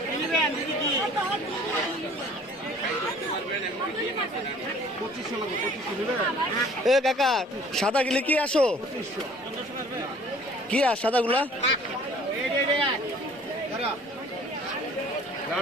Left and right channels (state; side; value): normal; both; correlation 0.52